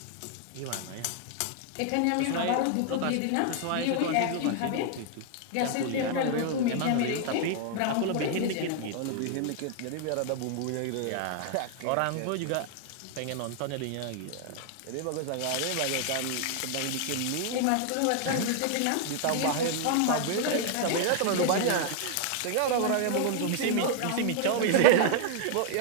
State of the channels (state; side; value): different; both; correlation 0.00